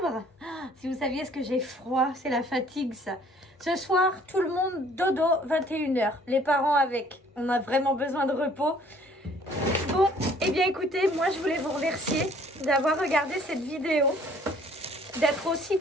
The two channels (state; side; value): normal; both; correlation 0.57